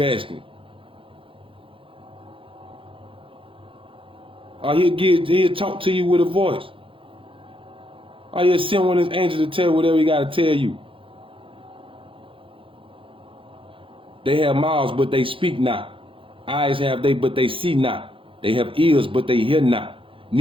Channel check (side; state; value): left; late; 0.25 ms